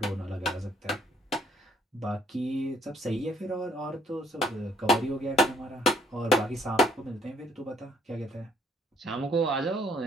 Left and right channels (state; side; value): normal; both; correlation 0.65